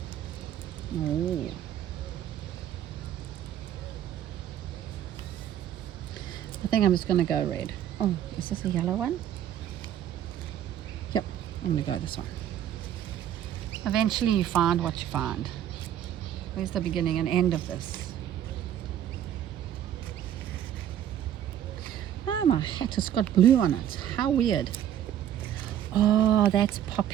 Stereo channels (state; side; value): quieter; left; 10.7 dB